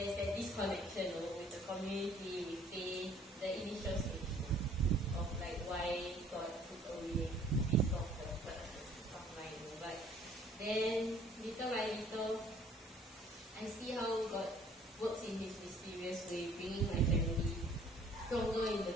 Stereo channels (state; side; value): normal; both; correlation 0.57